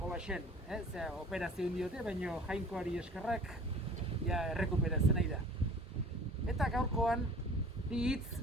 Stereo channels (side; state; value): both; normal; correlation 0.46